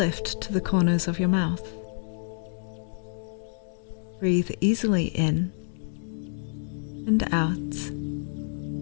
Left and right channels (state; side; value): silent; right; digital silence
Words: to the corners of your mouth. Breathe easily in and out,